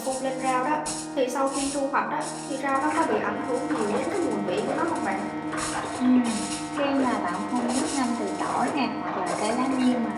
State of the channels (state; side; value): identical; both; correlation 1.00